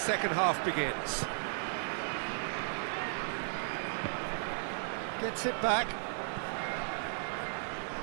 half begins. Gets it back.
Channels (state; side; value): silent; left; digital silence